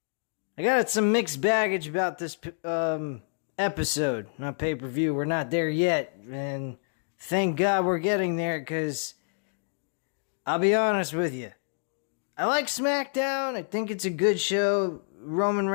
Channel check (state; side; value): silent; right; digital silence